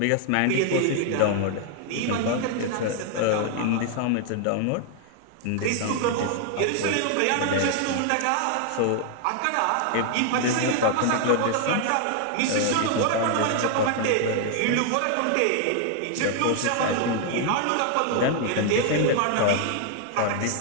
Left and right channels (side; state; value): both; different; correlation 0.00